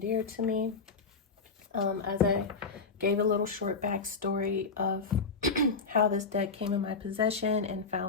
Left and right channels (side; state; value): right; quieter; 4.6 dB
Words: dear to me. As I gave a little short backstory of how this deck came in my possession and